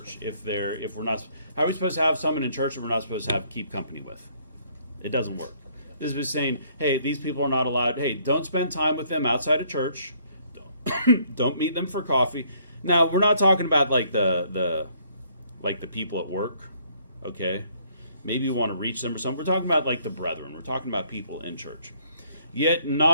if we're not? How are we supposed to have someone in church that we're not supposed to keep company with? It doesn't work. This is saying, hey, these people are not allowed. Hey, don't spend time with them outside of church. Don't meet them for coffee. Now, we're not talking about like the people at work, okay? Maybe you want to reach them or something. We're talking about like the brethren. We're talking about people in church. Yet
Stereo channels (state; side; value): inverted; both; correlation -0.64